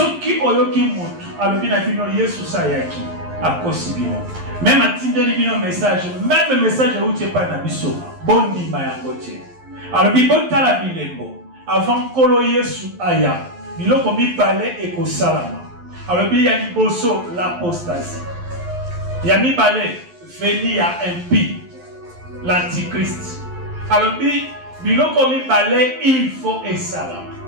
qui ont eu qui montrent, alors bien Yesu Sayaki, à Kosibino. Même à Tinder, il y a un message. Même le message où tu n'es pas un abisso. Bon dit, Mayangote. Alors, il y a la bilembo. Avant Kolo Yesu Aya. Il y a comme il parlait et qu'au salama. Alors, il y a l'apostasie. Il y a mis balai, venir à impie, l'antichrist. Alors, il y a comme il parlait, il faut et salam.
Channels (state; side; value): late; left; 11 ms